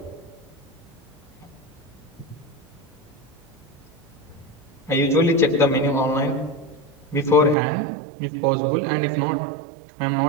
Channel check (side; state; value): left; drops out; at 7.6 s